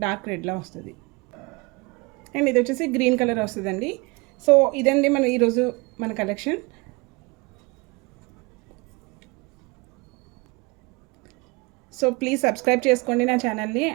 డార్క్ రెడ్లా వస్తుంది. అండ్ ఇది వచ్చేసి గ్రీన్ కలర్ వస్తుందండి. సో ఇదండి ఈరోజు మన కలెక్షన్. సో ప్లీజ్ సబ్స్క్రైబ్ చేసుకోండి నా ఛానల్ని.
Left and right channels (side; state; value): left; quieter; 26.6 dB